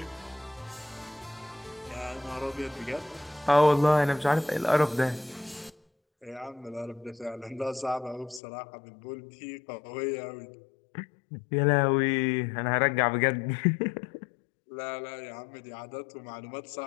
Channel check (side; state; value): right; drops out; at 8.4 s